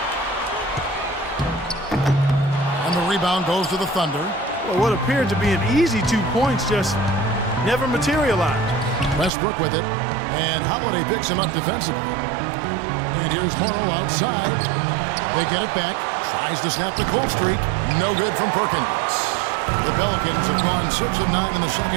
And the rebound goes to the Thunder. Well, what appeared to be an easy 2 points just never materialized. Westbrook with it. And Holiday picks him up defensively. And here's Morrow outside. They get it back. Tries to snap the cold streak. No good from Perkins. The Pelicans have gone 6 of 9 in the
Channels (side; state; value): left; drops out; at 9.3 s